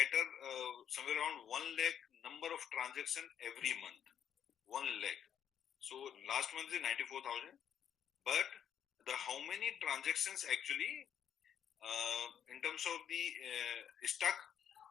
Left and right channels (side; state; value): right; quieter; 9.0 dB